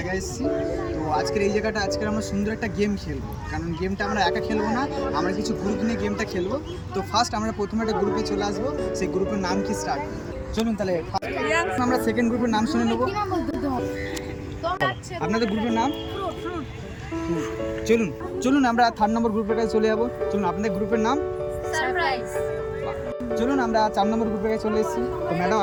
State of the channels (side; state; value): both; identical; correlation 1.00